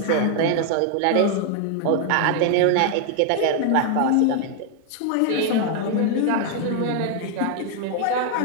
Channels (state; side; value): different; both; correlation 0.00